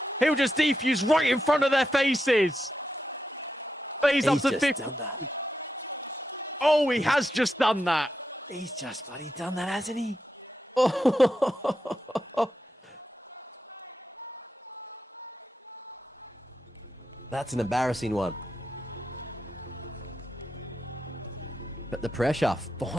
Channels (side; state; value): both; normal; correlation 0.86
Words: He'll just defuse right in front of their faces. FaZe up to 50. Oh, he has just done that. He's just bloody done that, hasn't he? Oh. That's an embarrassing one. But the pressure